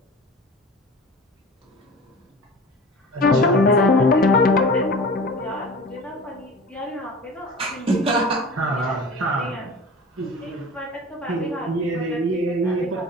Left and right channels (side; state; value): both; normal; correlation 0.37